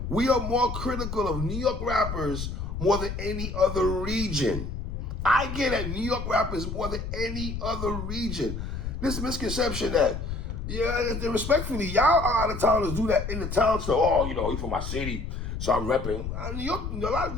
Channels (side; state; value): left; noise; rumble, 5 dB below the sound